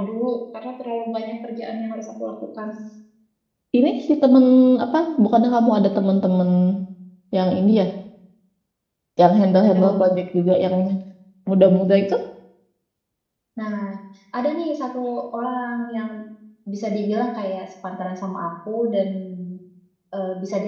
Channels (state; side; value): identical; both; correlation 1.00